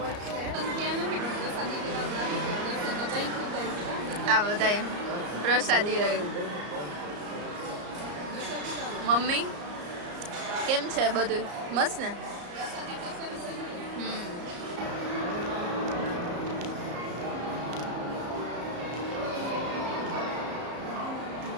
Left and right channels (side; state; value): left; late; 34 ms